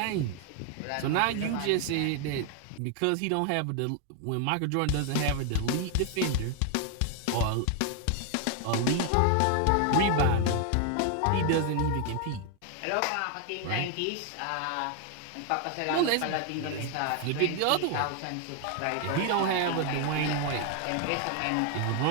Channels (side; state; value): both; different; correlation 0.00